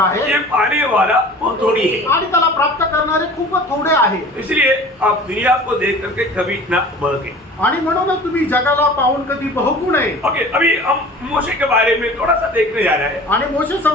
ये पाने वाला वो थोड़ी है। आणि त्याला प्राप्त करणारे खूप थोडे आहे इसलिए आप दुनिया को देख करके कभी ना बहके। आणि म्हणूनच तुम्ही जगाला पाहून कधी बहकू नये ओके, अभी हम मोशे के बारे में थोड़ा सा देखने जा रहे हैं। आणि मोशे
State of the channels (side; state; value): both; normal; correlation 0.42